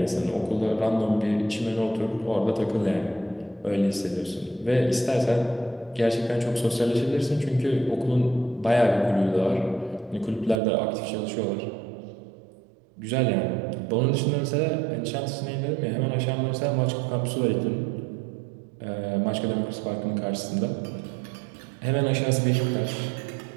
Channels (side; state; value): left; drops out; at 10.6 s